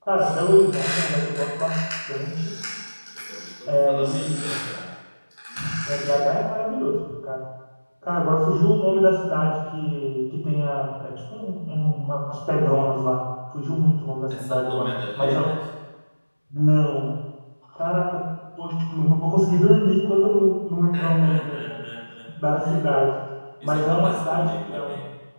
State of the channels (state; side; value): inverted; both; correlation -1.00